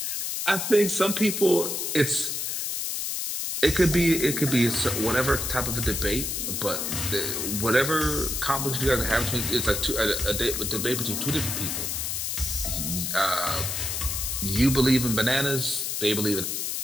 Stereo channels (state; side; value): noise; left; hiss, 2 dB below the sound